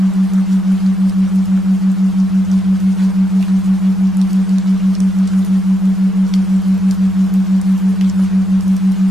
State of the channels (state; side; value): normal; both; correlation 0.80